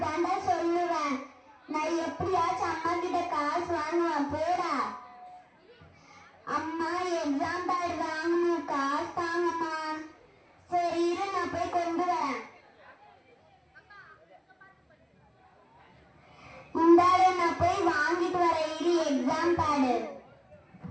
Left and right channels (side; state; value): both; identical; correlation 1.00